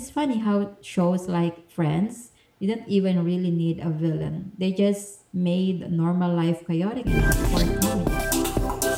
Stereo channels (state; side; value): identical; both; correlation 1.00